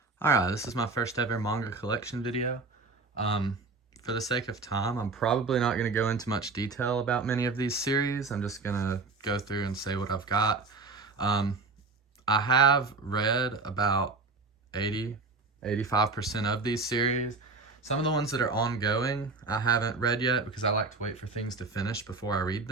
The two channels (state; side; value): quieter; left; 3.9 dB